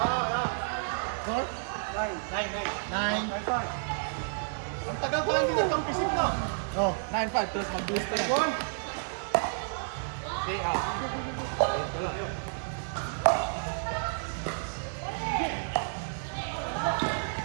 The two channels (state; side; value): silent; left; digital silence